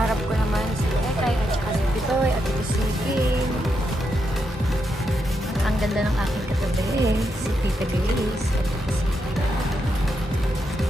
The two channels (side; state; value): both; normal; correlation 0.82